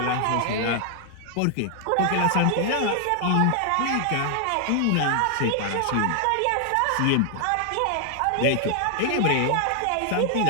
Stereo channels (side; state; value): both; different; correlation 0.00